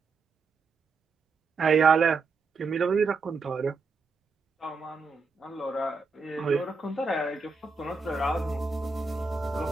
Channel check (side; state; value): left; quieter; 4.3 dB